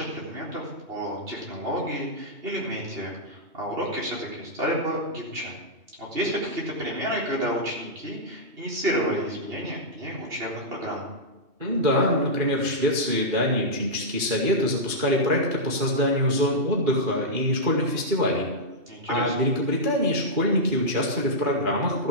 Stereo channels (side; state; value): left; late; 2.4 ms